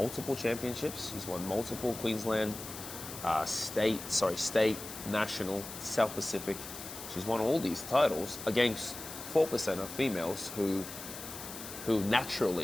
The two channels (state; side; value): noise; left; hiss, 11 dB below the sound